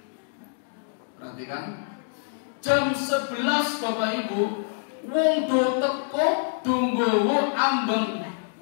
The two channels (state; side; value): silent; right; digital silence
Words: Perhatikan. Jam 11 Bapak Ibu, wong do teko nggawa ambeng.